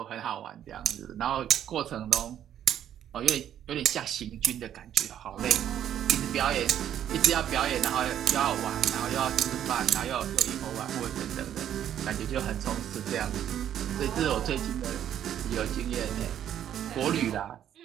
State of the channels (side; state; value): left; quieter; 10.4 dB